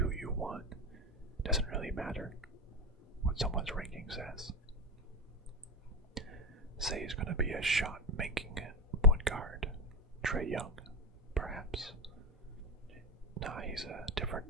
you want. Doesn't really matter what someone's ranking says. Say he's going to be a shot-making point guard. Trae Young, perhaps. Nah, he's a different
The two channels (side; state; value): both; normal; correlation 0.17